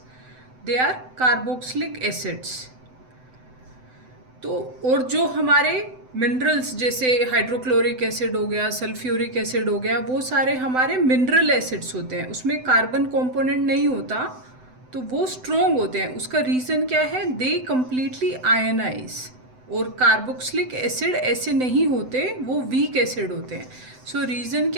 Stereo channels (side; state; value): left; late; 7.9 ms